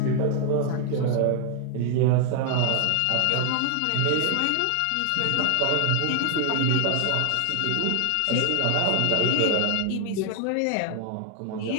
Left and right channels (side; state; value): both; different; correlation 0.00